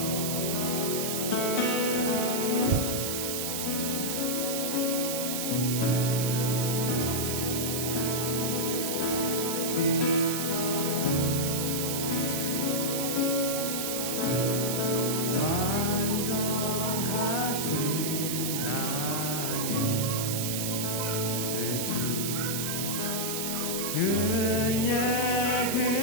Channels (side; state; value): right; noise; hiss, 1 dB below the sound